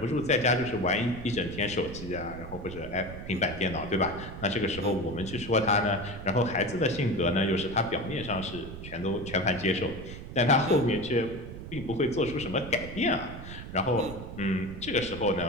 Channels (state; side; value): noise; right; rumble, 11 dB below the sound